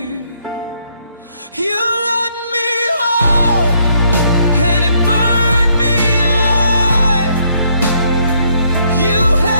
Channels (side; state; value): both; inverted; correlation -0.70